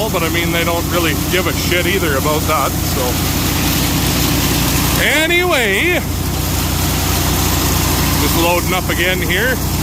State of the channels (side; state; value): both; identical; correlation 1.00